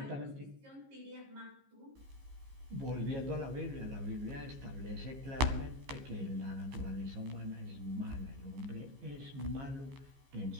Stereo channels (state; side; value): late; left; 15 ms